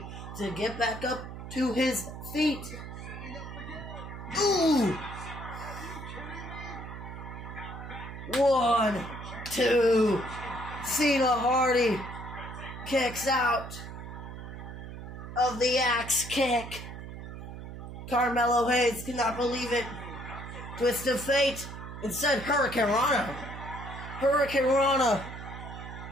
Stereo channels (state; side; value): noise; right; hum, 10 dB below the sound